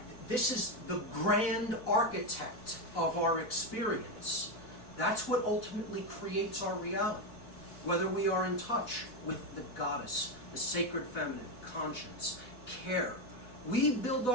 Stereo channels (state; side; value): late; right; 4.1 ms